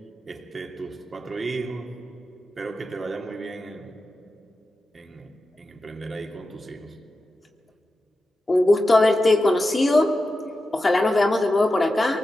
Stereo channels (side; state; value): both; normal; correlation 0.91